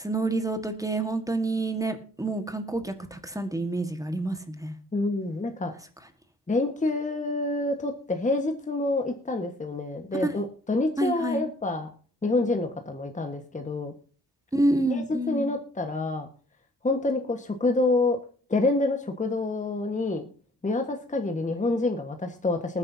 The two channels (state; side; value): normal; both; correlation 0.59